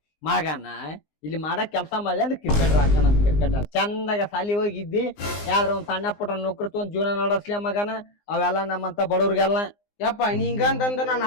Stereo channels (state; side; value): late; right; 19 ms